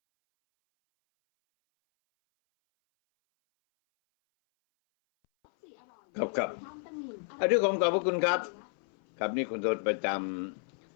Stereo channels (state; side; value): silent; right; 57 dB below the other